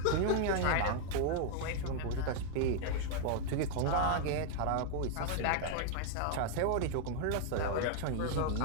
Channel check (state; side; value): different; both; correlation 0.00